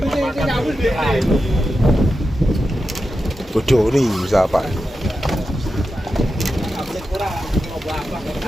Bodoh nih siapa?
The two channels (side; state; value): both; normal; correlation 0.90